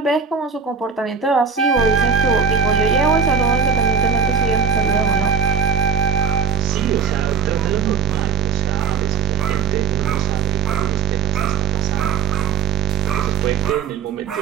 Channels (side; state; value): left; quieter; 6.3 dB